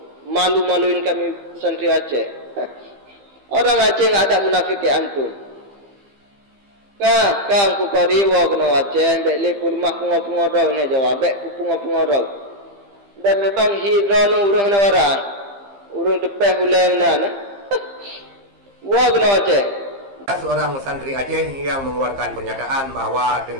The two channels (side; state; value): left; late; 15 ms